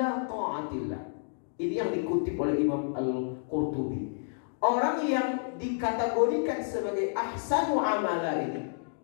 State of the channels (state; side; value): silent; right; digital silence